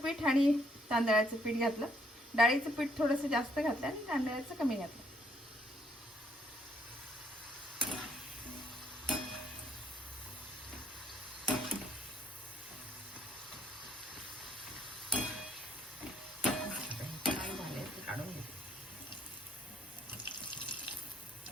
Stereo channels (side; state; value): both; normal; correlation 0.68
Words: आणि तांदळाचं पीठ घातलं. डाळीचं पीठ थोडंसं जास्त घातलं आणि तांदळाचं कमी घातलं. काढून घेते.